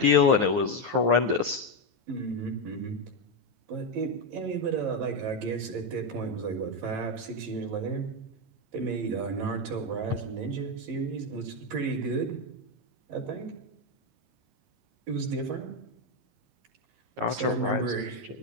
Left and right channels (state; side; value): late; left; 15 ms